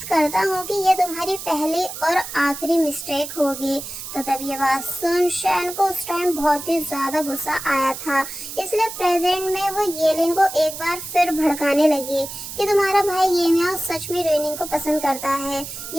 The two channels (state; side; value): noise; right; hiss, 9 dB below the sound